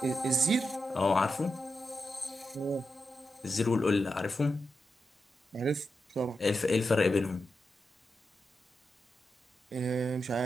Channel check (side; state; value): both; normal; correlation 0.88